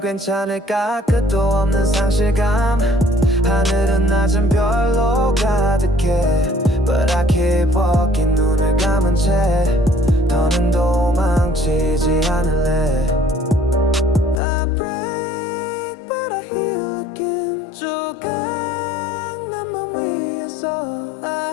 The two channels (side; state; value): right; drops out; at 14.4 s